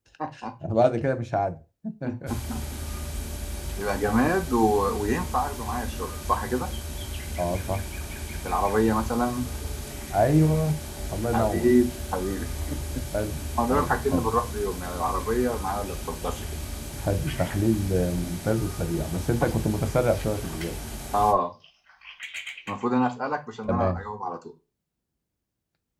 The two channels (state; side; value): identical; both; correlation 1.00